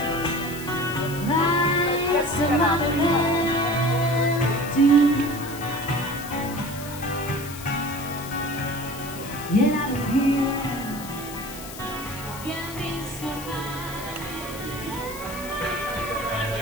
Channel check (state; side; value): noise; left; hiss, 13 dB below the sound